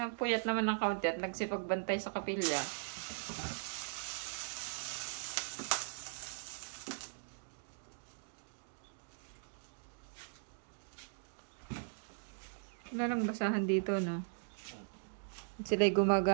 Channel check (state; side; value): silent; left; digital silence